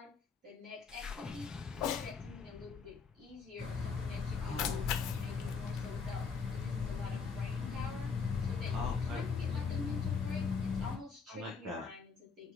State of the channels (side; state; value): right; quieter; 5.3 dB